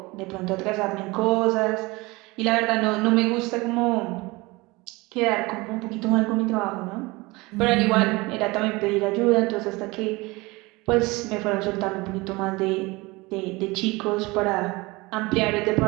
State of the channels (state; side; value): quieter; left; 23.2 dB